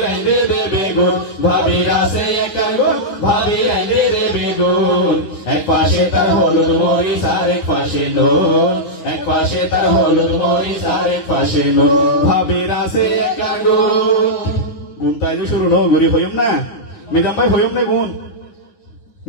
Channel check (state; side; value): late; right; 9.7 ms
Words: আইনে দেবে গুণ ভাবির আছে একার গুণ ভাবির আইনে দেবে গুণ এক পাশে তার হলুদ মরিচ আর এক পাশে নুন এক পাশে তার হলুদ মরিচ আর এক পাশে নুন ভাবির আছে একার গুণ গুণ তাই যে শুরু ন গরি হইম না মিজাম ভাই হইম না গুণ